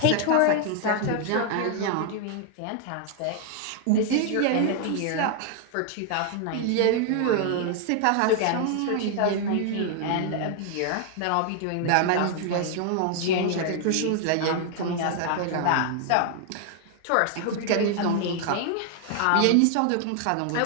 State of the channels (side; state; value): both; different; correlation 0.00